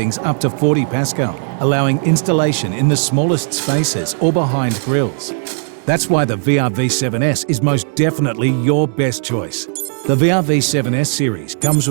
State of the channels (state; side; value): silent; left; digital silence